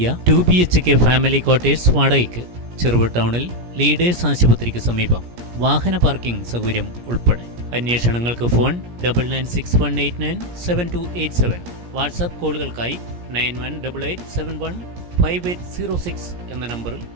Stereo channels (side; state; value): left; late; 17 ms